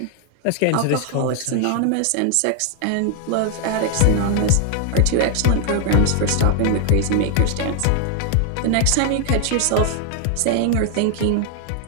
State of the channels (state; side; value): different; both; correlation 0.00